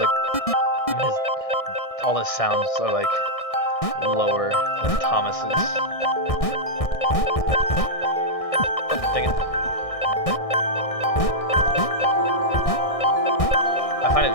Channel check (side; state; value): right; late; 1.6 ms